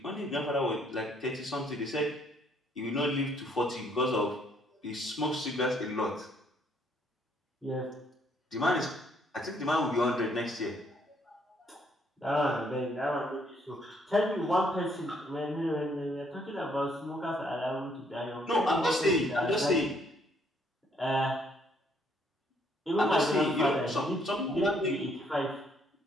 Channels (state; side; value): normal; both; correlation 0.68